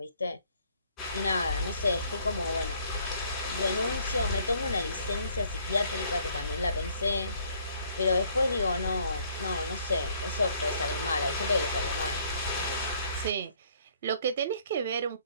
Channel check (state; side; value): inverted; both; correlation -0.63